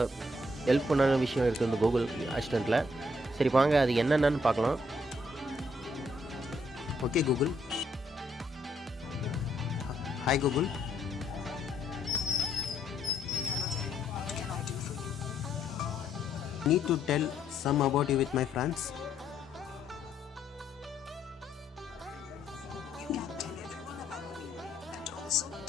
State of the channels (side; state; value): both; normal; correlation 0.72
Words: ஹெல்ப் பண்ணான விஷயம் இருக்குது இந்த Google Assistantல. சரி வாங்க அது என்னென்னு பார்க்கலாம். Okay Google. Hi Google. Need to tell some about you with my friends. You can tell everyone about me and also